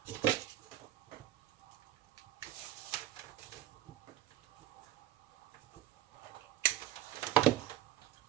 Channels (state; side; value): quieter; left; 12.7 dB